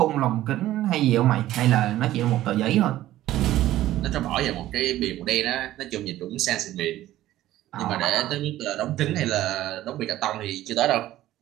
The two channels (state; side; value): quieter; left; 14.4 dB